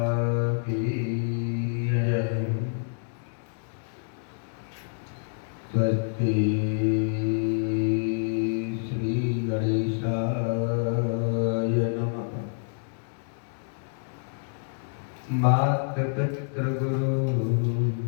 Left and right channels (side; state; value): right; silent; digital silence